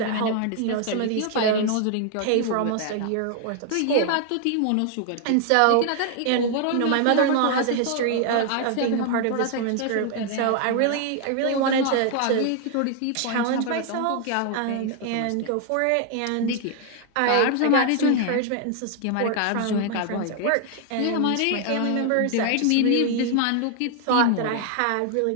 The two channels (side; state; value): both; different; correlation 0.00